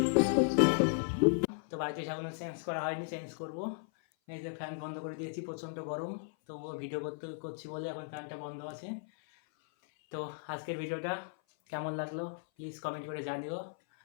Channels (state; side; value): silent; right; 54 dB below the other